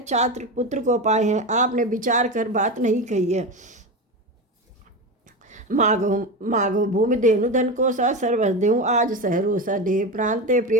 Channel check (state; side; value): normal; both; correlation 0.21